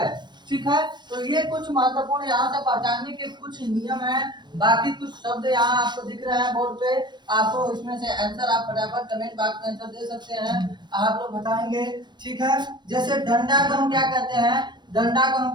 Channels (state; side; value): late; left; 0.22 ms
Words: ठीक है, तो ये कुछ महत्वपूर्ण यहाँ से पहचानने के कुछ नियम हैं। बाकी कुछ शब्द यहाँ आपको दिख रहे हैं बोर्ड पे, आपको इसमें से आंसर आप फटाफट कमेंट बॉक्स में आंसर दे सकते हैं, आप लोग बताएंगे। ठीक है, जैसे डंडा को हम क्या कहते हैं, डंडा को हम